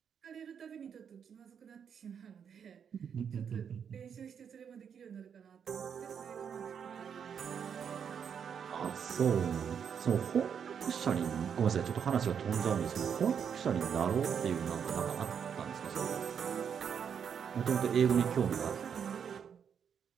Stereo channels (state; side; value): quieter; left; 7.5 dB